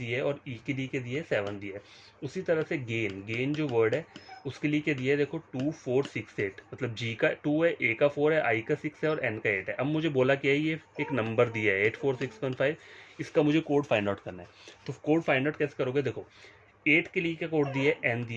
है, और E के लिए क्या दिया है 7 दिया है। उसी तरह से गेन जो वर्ड है उसके लिए क्या दिया है, देखो 2468, मतलब G का 2 है, A का 4 है, I का 6 है और N का 8 है। अब मुझे बोला क्या है, ये एक नंबर दिया है 84615, इसका मुझे कोड फाइंड आउट करना है। तो कोड फाइंड आउट कैसे करोगे, देखो 8 के लिए क्या कोड दिया है, N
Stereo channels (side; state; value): both; identical; correlation 1.00